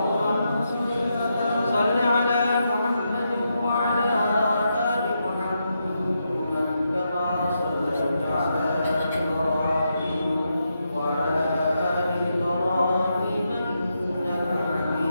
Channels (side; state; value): both; inverted; correlation -0.83